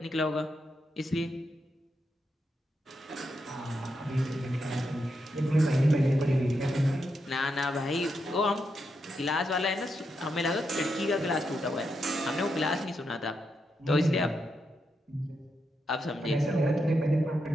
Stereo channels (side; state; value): both; normal; correlation 0.83